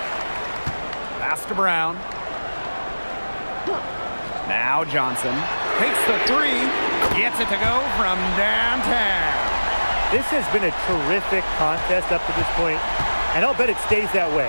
Pass to Brown. Now Johnson takes the 3. Gets it to go from downtown. This has been a terrific contest up to this point, and I'll bet it stays that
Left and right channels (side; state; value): both; inverted; correlation -1.00